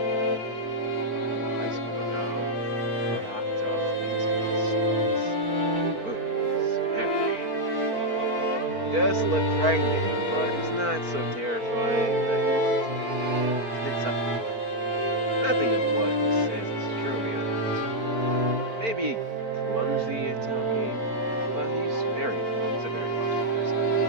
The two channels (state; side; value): late; left; 4.4 ms